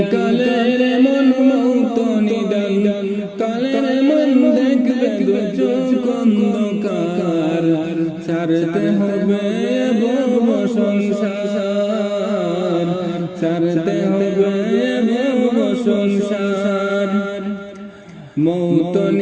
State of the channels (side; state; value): both; identical; correlation 1.00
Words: কালের মন, মৌত নিদান কালের মন, দেখবে দু চোখ অন্ধকার, ছাড়তে হবে ভব সংসার, ছাড়তে হবে ভব সংসার। মৌত